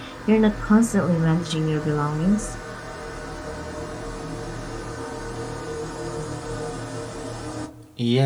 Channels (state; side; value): identical; both; correlation 1.00